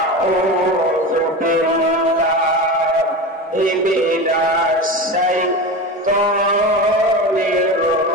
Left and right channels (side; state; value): both; normal; correlation 0.26